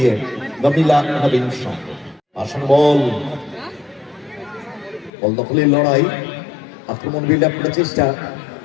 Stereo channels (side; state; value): right; drops out; at 5.1 s